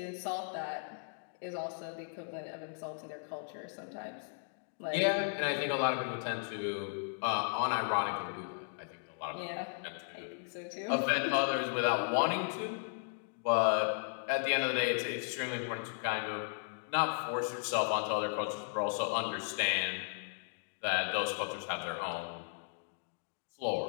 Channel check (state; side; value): silent; right; digital silence